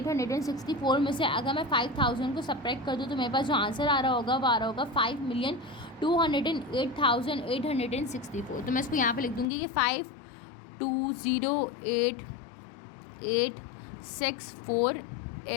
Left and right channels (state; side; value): drops out; right; at 9.5 s